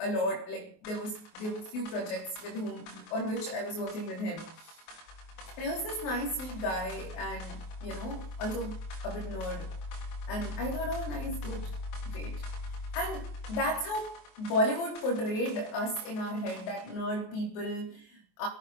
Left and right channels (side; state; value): right; late; 24 ms